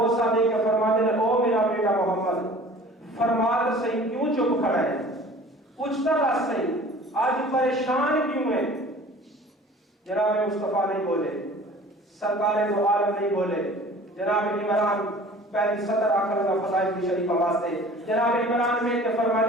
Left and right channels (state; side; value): normal; both; correlation 0.46